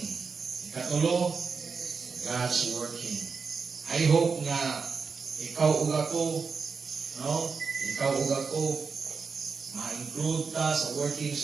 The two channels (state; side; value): quieter; left; 5.2 dB